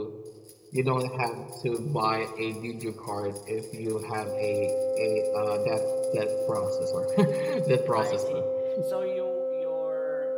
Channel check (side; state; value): both; identical; correlation 1.00